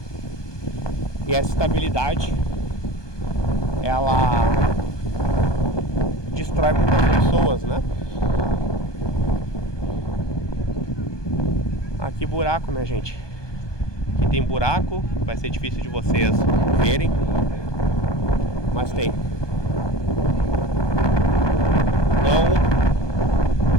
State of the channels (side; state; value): right; late; 1.2 ms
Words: E essa estabilidade, ela destrói muitas pessoas, né? Aqui buraco, né, gente? Aqui tem buraco, vai ser difícil de vocês verem, mas tem. Então,